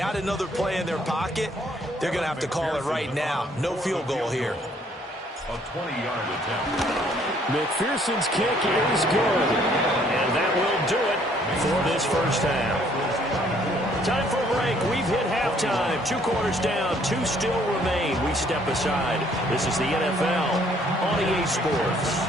another play in their pocket. They're going to have to call it right now. No field goal here. A 20-yard attempt. McPherson's kick is good. And that will do it for this first half. Time for a break. We've hit halftime. 2 quarters down. 2 still remain. We step aside. This is the NFL on EA Sports.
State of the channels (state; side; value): normal; both; correlation 0.63